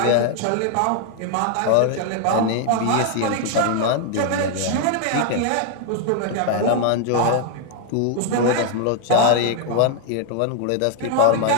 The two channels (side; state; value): both; different; correlation 0.00